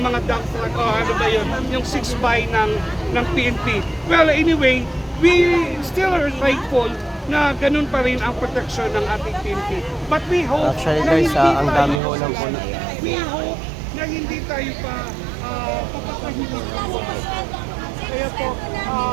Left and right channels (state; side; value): drops out; left; at 12.0 s